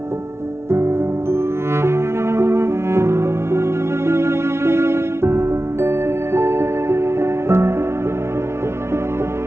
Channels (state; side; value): late; left; 0.13 ms